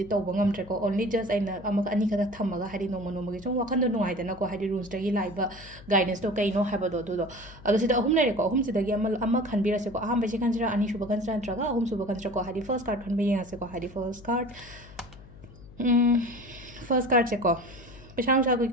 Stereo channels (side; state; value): left; noise; hum, 19 dB below the sound